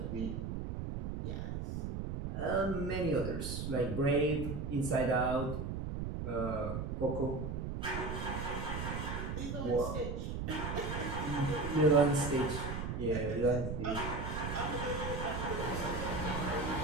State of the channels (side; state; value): right; noise; rumble, 4 dB below the sound